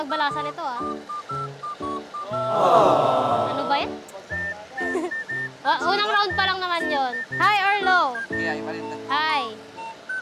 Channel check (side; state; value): both; identical; correlation 1.00